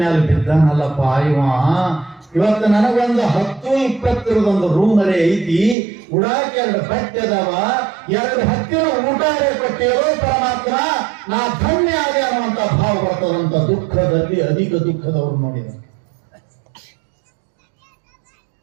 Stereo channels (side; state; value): left; drops out; at 5.8 s